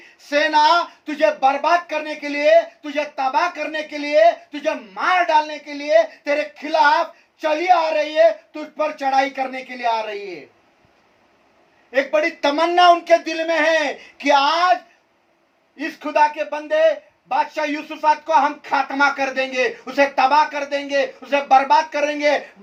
सेना, तुझे बर्बाद करने के लिए, तुझे तबाह करने के लिए, तुझे मार डालने के लिए तेरे खिलाफ चली आ रही है, तुझ पर चढ़ाई करने के लिए आ रही है। एक बड़ी तमन्ना उनके दिल में है कि आज इस खुदा के बंदे बादशाह यहोशाफात को हम खात्मा कर देंगे, उसे तबाह कर देंगे, उसे बर्बाद करेंगे।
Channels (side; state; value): both; identical; correlation 1.00